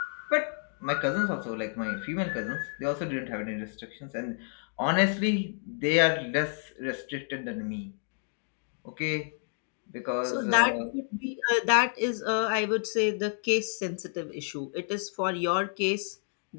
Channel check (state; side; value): silent; right; 58 dB below the other